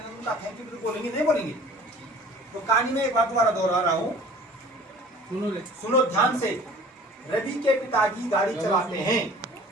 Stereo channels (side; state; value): both; normal; correlation 0.47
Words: हैं उनका थैंक यू भी बोलेंगे, नहीं बोलेंगे? तो कहानी में एक बार दोबारा दोहरा रहा हूँ, सुनो ध्यान से। रवि के पिताजी गाड़ी चलाते हैं।